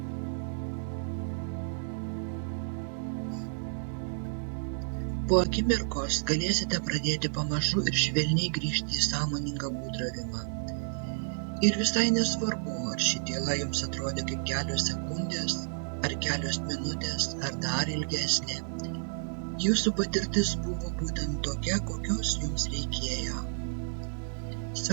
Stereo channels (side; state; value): left; silent; 57 dB below the other